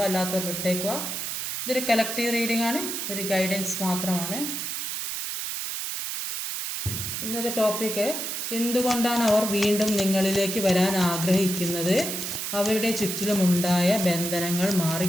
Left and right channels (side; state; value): right; noise; hiss, 4 dB below the sound